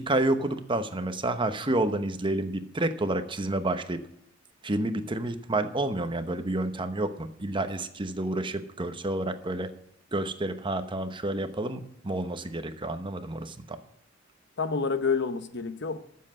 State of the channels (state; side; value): normal; both; correlation 0.47